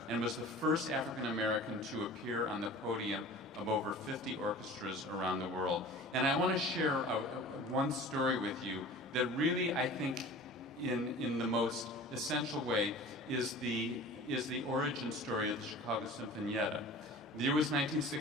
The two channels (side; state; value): both; normal; correlation 0.41